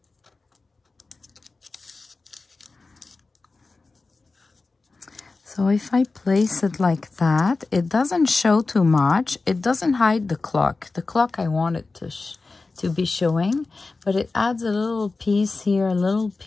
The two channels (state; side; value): quieter; right; 3.7 dB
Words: So if I place it like that, it doesn't show too much. It doesn't hide the clock. The clock I want it to be showing, but it adds a little piece here, a little